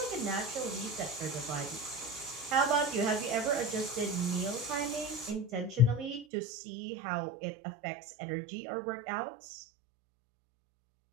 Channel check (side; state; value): left; drops out; at 6.2 s